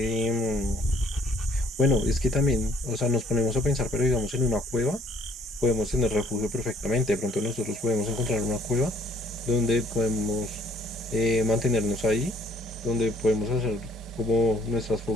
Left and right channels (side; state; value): both; normal; correlation 0.61